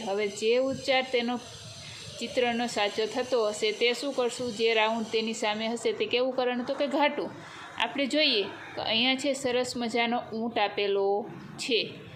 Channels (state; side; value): identical; both; correlation 1.00